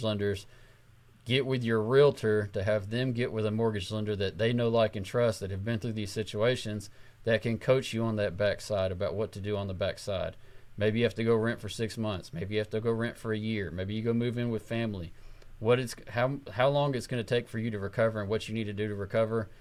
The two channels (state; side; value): identical; both; correlation 1.00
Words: lenders. Get with your realtor to have them get with a mortgage lender that they know, like, and trust, that have been through these situations, that can coach you on that backside about what to do on the backside. Maybe you have to go rent for 6 months. Maybe you have to go rent for a year. Maybe you go move in with family. How long it's going to take for you to recover and what you need to do to recover